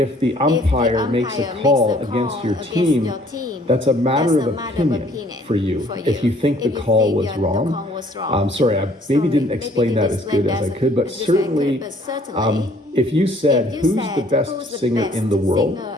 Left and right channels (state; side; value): normal; both; correlation 0.59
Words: the umpire makes a call against your team, that's a matter of opinion for you. If you think the call was wrong, sorry, I maybe didn't explain that as good as I could, but certainly, if you said, who's the best singer in the world,